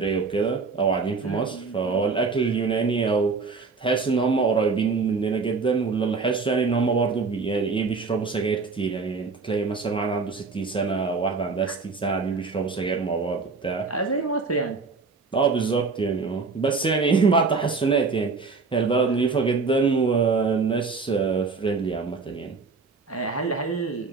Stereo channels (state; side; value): quieter; left; 4.5 dB